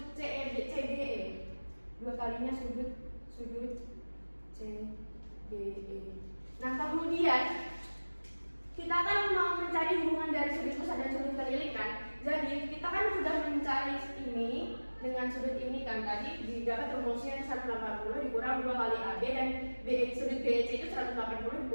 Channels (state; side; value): inverted; both; correlation -1.00